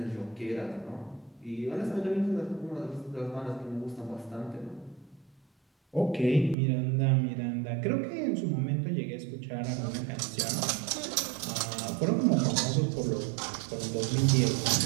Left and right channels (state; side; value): drops out; left; at 6.6 s